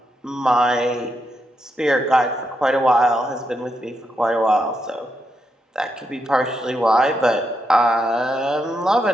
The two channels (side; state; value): both; normal; correlation 0.82